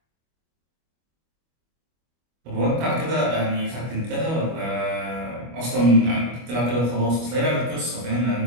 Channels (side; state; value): left; late; 25 ms